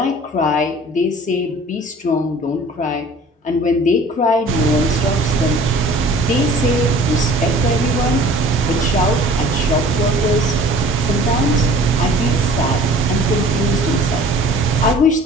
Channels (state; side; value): normal; both; correlation 0.47